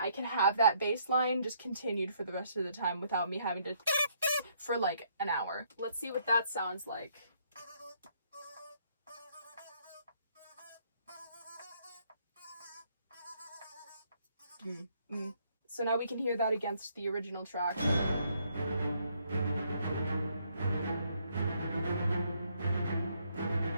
can have that bass line just continued for the rest of the time without me having to for like an hour. Let's see what that sounds like. So now we can hear that against the original track.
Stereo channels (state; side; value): inverted; both; correlation -0.69